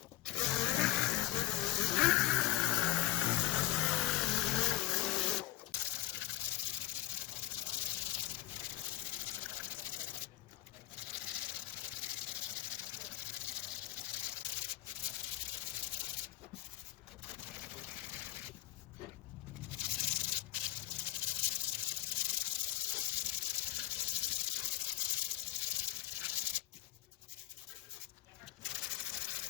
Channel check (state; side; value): quieter; right; 14.3 dB